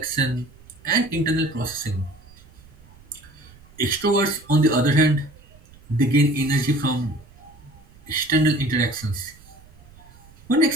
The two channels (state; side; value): noise; right; rumble, 24 dB below the sound